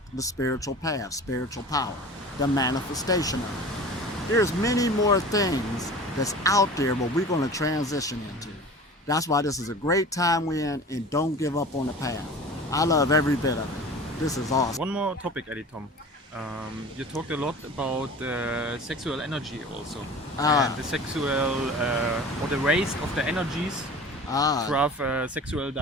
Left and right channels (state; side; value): normal; both; correlation 0.39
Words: the spiritual path, spiritual power, the manifestation of it. There's many more things that's out there, but we're going to transition into. That's why this is a great time we're in, and don't give up on the path. I love every bit of it. This is awesome. One more topic, Elitom. You talked a lot about sexual energy also. And the sexual, or the waste of the energies to have sexual